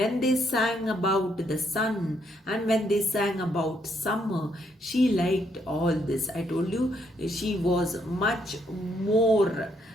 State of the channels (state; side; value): normal; both; correlation 0.73